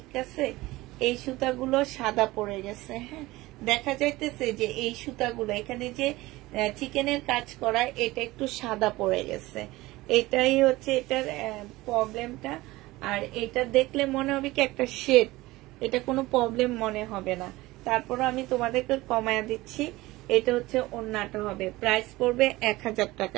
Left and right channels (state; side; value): quieter; left; 19.3 dB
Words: আছে? এই সুতাগুলো সাদা পড়ে গেছে। হ্যাঁ দেখা যাইতেছে যে এই সুতাগুলো এখানে যে চিকেনের কাজ করা, এটা একটু সাদা পড়ে গেছে। এটাই হচ্ছে এটার প্রবলেমটা। আর এটা দেখলে মনে হবে কি একটা শেড, এটা কোনো প্রবলেম মনে হবে না। তারপর আমি তোমাদেরকে কমায়া দিচ্ছি। এটা হচ্ছে ওড়নাটা হবে, প্রাইস পড়বে 1000